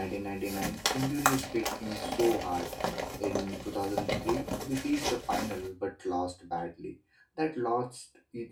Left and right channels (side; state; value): both; identical; correlation 1.00